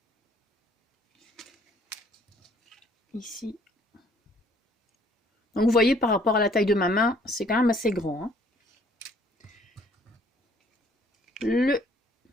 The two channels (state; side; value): normal; both; correlation 0.60